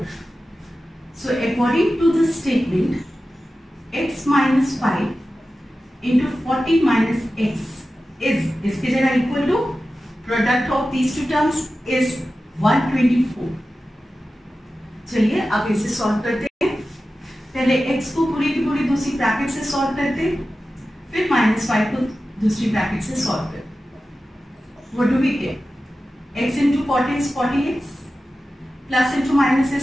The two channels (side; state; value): both; normal; correlation 0.94